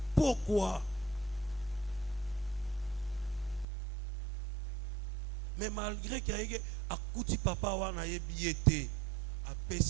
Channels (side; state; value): left; drops out; at 3.7 s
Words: pourquoi? Mais malgré qu'il y ait un petit papa wana yebiete a